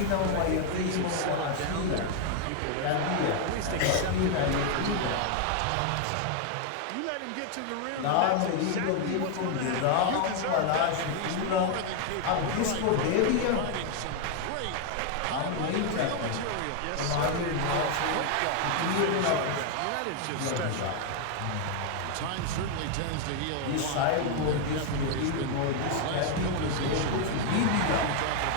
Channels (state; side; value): different; both; correlation 0.00